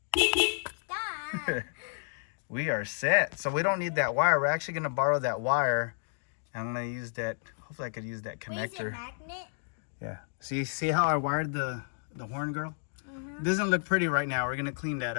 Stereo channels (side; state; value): right; silent; digital silence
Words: Stop. We are set. So we don't need that wire. We're actually gonna borrow that wire. I'm gonna use that. Hopefully I could use that Wait, is it connector. magnet? Yeah. See how I wired the horn, girl? It doesn't look pretty right now. We're gonna clean that